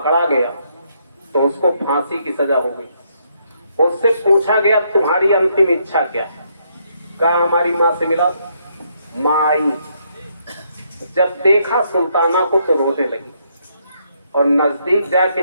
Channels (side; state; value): both; inverted; correlation -0.74